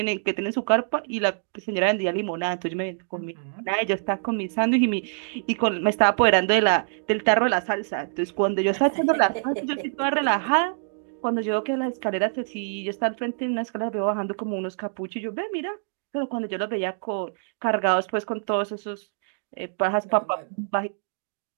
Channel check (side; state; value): left; silent; digital silence